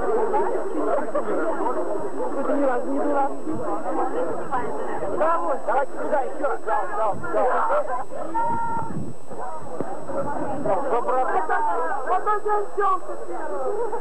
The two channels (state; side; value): identical; both; correlation 1.00